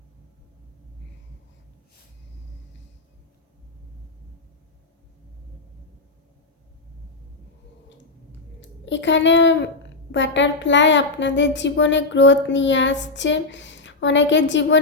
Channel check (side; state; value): right; quieter; 3.4 dB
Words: এখানে বাটারফ্লাই আপনাদের জীবনে গ্রোথ নিয়ে আসছে, অনেকের